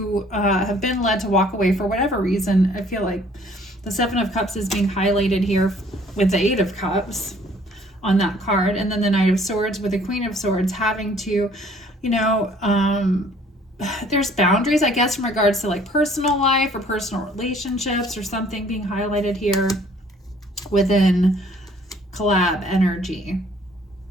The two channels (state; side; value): normal; both; correlation 0.58